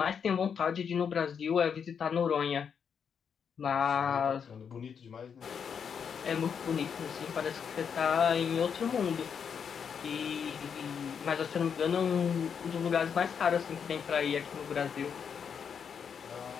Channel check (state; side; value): quieter; right; 7.0 dB